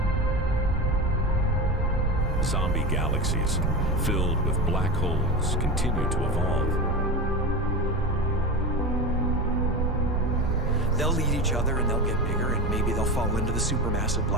Zombie galaxies filled with black holes continue to evolve. They'll eat each other and they'll get bigger, and maybe they'll fall into the supermassive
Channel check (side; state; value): both; normal; correlation 0.24